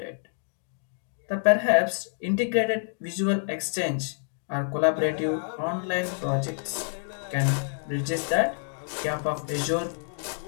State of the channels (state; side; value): silent; right; digital silence